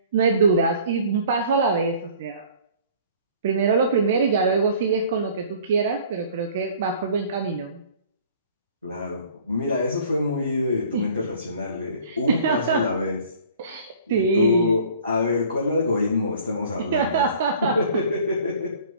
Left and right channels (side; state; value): both; inverted; correlation -0.50